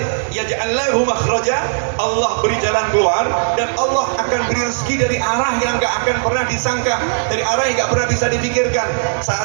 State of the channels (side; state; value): left; silent; digital silence